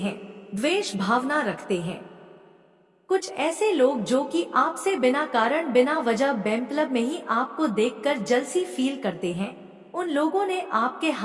द्वेष भावना रखते हैं, कुछ ऐसे लोग जो कि आपसे बिना कारण बिना वजह बेमतलब में ही आपको देखकर जलसी फील करते हैं, उन लोगों ने आपके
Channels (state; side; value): identical; both; correlation 1.00